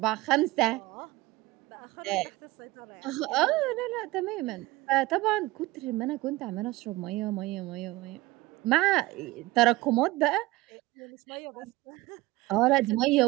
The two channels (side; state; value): left; quieter; 19.6 dB